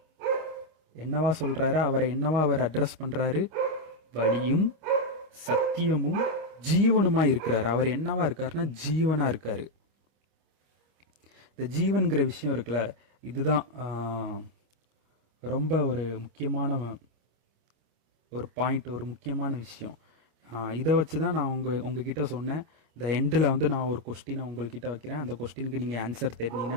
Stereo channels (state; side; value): late; left; 25 ms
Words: என்னவா சொல்றாரு? அவரை என்னவா அவர் அட்ரஸ் பண்றாரு? வழியும் சத்தியமும் ஜீவனுமா இருக்கிறாரு. அவர் என்னவா இருக்காருன்னா ஜீவனா இருக்காரு. இந்த ஜீவன்கிற விஷயம் இருக்குல்ல, இதுதான் ரொம்ப ஒரு முக்கியமான ஒரு பாயிண்ட், ஒரு முக்கியமான விஷயம். இதை வச்சு தான் நான் உங்ககிட்ட சொன்னேன். இந்த எண்டில் வந்து நான் ஒரு கொஸ்டினை உங்கள்கிட்ட வைக்கிறேன். அந்த கொஸ்டினுக்கு நீங்கள் ஆன்சர்